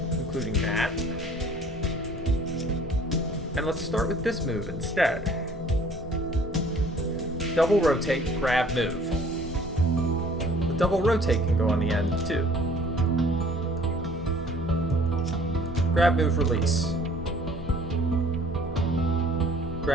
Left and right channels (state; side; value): normal; both; correlation 0.54